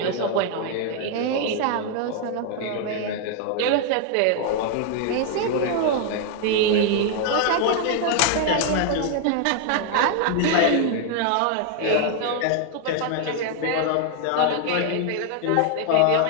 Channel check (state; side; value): different; both; correlation 0.00